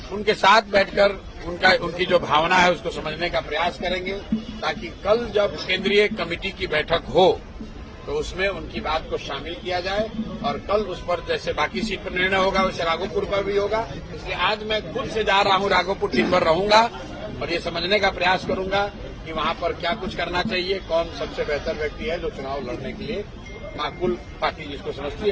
उनके साथ बैठकर उनकी जो भावना है उसको समझने का प्रयास करेंगे, ताकि कल जब केंद्रीय कमेटी की बैठक हो तो उसमें उनकी बात को शामिल किया जाए और कल उस पर जैसे बाकी सीट पर निर्णय होगा वैसे राघोपुर पर भी होगा। इसलिए आज मैं खुद से जा रहा हूं, राघोपुर दिन भर रहूंगा और ये समझने का प्रयास करूंगा कि वहां पर क्या कुछ करना चाहिए, कौन सबसे बेहतर व्यक्ति है जो चुनाव लड़ने के लिए माकूल पार्टी जिसको समझती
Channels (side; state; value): both; identical; correlation 1.00